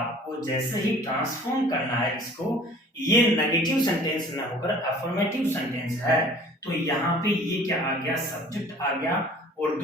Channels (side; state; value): both; normal; correlation 0.49